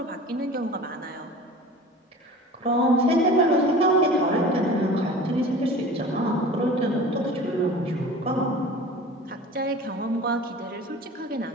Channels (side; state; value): both; normal; correlation 0.39